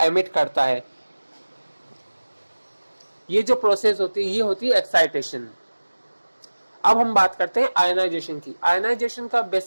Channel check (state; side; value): inverted; both; correlation -1.00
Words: एमिट करता है। ये जो प्रोसेस होती है ये होती है एक्साइटेशन। अब हम बात करते हैं आयनाइजेशन की। आयनाइजेशन का